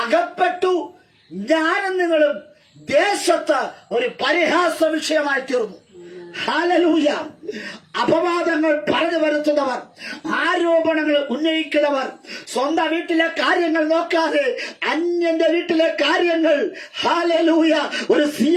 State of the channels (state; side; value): identical; both; correlation 1.00